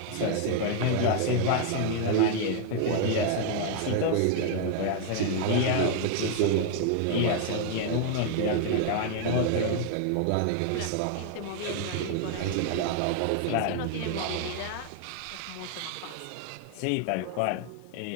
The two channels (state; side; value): different; both; correlation 0.00